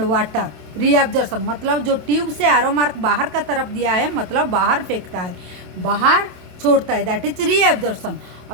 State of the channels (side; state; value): left; late; 27 ms